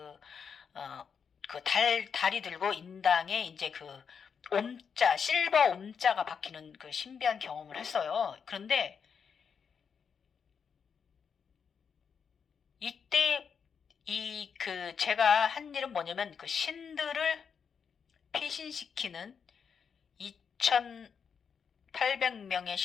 달이 들고 인당에 이제 옴자, 실버 옴자가 박히는 그 신비한 경험을 했어요. 그런데 이때 제가 한 일은 뭐냐면 그 신들을 피신시키는 2,800명의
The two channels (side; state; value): right; quieter; 6.6 dB